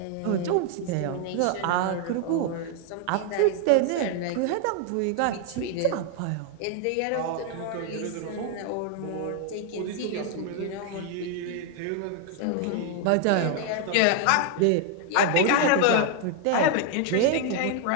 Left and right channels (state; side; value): different; both; correlation 0.00